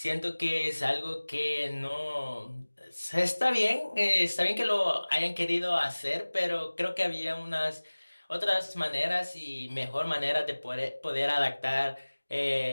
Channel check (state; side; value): inverted; both; correlation -1.00